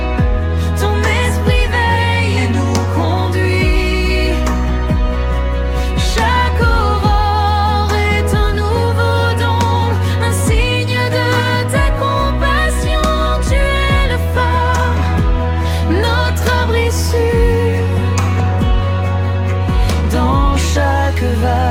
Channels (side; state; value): both; identical; correlation 1.00